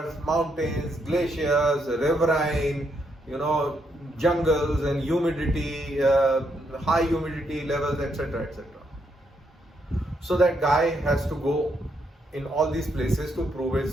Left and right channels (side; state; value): both; normal; correlation 0.77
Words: mountains, glaciers, riverine, jungles and humidity, high humidity levels, etc., etc. So that guy has to go in all these places to prove